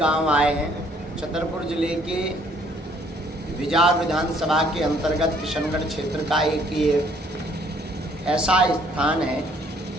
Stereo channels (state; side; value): normal; both; correlation 0.63